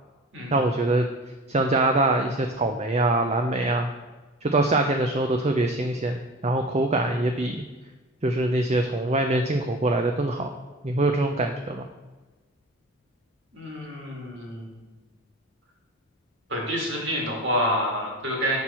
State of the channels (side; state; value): both; normal; correlation 0.36